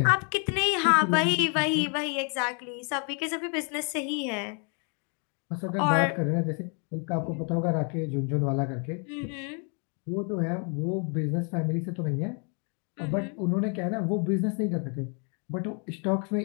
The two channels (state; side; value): quieter; right; 38.8 dB